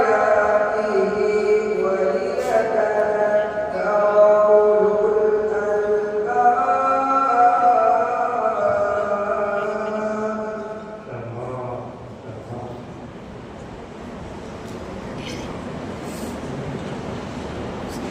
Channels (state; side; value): identical; both; correlation 1.00